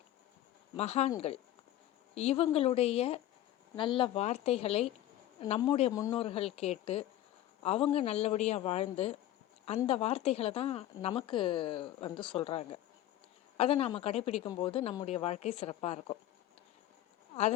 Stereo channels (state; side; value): quieter; right; 13.3 dB